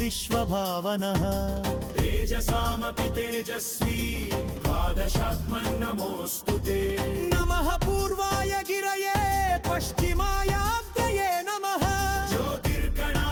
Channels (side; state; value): both; identical; correlation 1.00